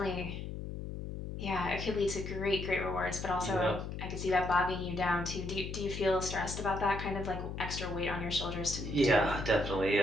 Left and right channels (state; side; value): noise; left; hum, 6 dB below the sound